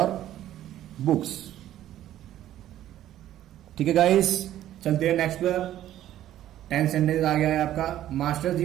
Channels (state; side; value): quieter; left; 12.6 dB